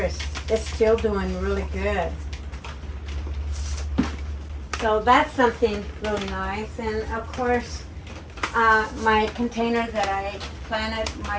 is still doing really good. So that's something really nice. And of course, my container that I planted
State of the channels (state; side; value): identical; both; correlation 1.00